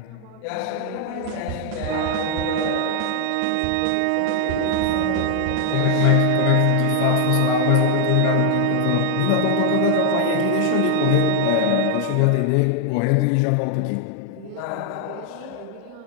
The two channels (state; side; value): different; both; correlation 0.00